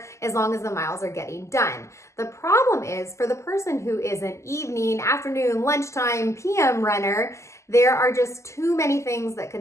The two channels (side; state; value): right; late; 0.14 ms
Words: as long as the miles are getting done. The problem is for the person who is an evening, afternoon, lunchtime, PM runner, there are just too many things that